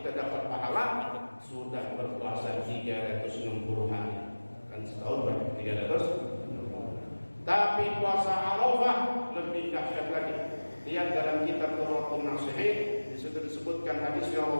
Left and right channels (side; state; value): both; inverted; correlation -1.00